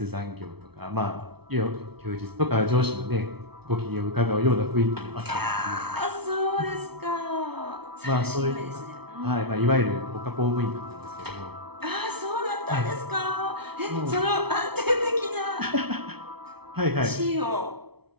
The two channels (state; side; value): late; left; 0.98 ms